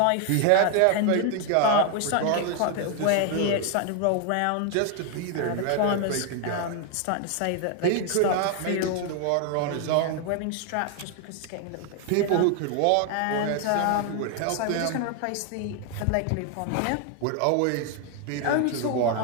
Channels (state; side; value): different; both; correlation 0.01